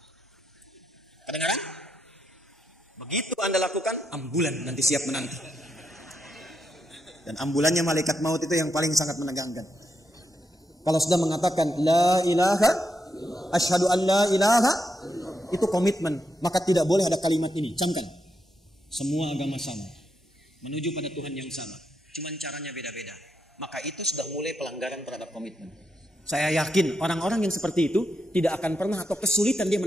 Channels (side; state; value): both; normal; correlation 0.83